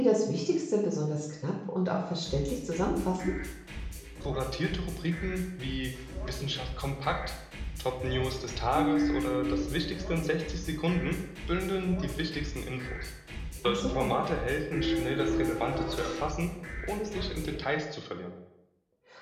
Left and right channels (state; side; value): identical; both; correlation 1.00